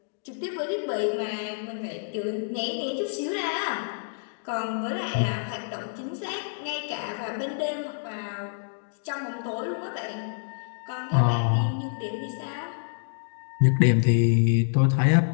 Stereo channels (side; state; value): right; silent; digital silence